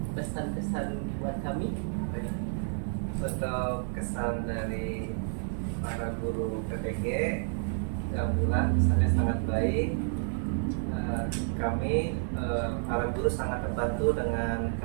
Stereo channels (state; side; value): silent; left; 58 dB below the other